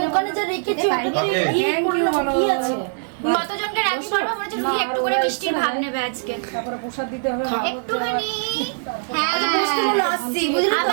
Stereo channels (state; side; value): silent; left; digital silence